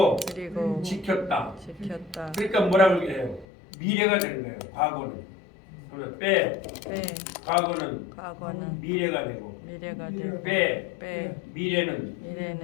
지켰다. 그러니까 뭐라고 해요? 미래가 되는 거예요. 과거는. 그래서 빼. 과거는 미래가 되고. 빼.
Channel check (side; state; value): right; drops out; at 3.5 s